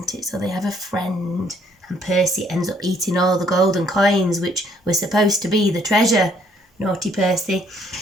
it? So they have a friend and Percy ends up eating all the golden coins which were supposed to be the treasure. Naughty Percy.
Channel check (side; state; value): both; normal; correlation 0.65